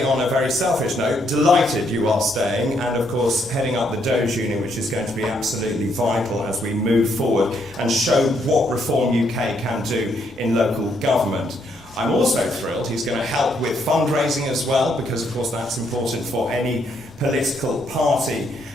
on a very selfish note, delighted you are staying and of course heading up the Doge Union, which is going to be absolutely vital as we move forward and show what Reform UK can do in local government. I'm also thrilled he's going to help with fundraising as well, because of course that's important for any political party.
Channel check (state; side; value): normal; both; correlation 0.73